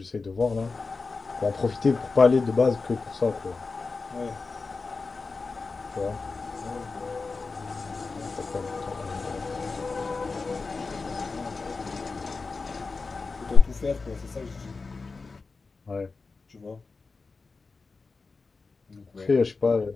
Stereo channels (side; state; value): right; quieter; 4.2 dB